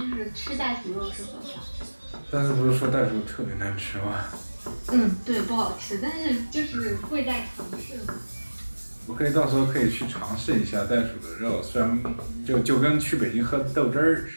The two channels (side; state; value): both; inverted; correlation -1.00